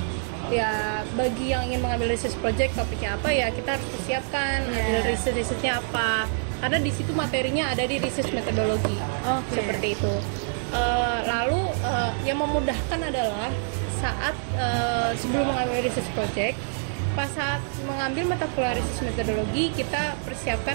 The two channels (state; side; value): silent; left; digital silence